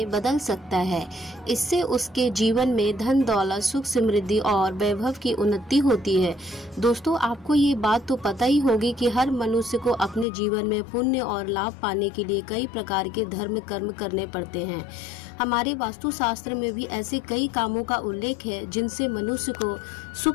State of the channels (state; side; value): drops out; right; at 10.2 s